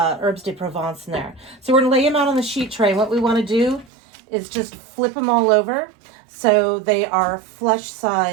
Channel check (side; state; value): left; drops out; at 3.9 s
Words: de Provence in there. So we're gonna lay them out on the sheet tray. What we wanna do is just flip them all over so they are flush